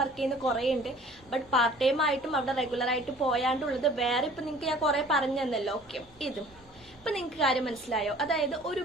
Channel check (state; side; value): normal; both; correlation 0.50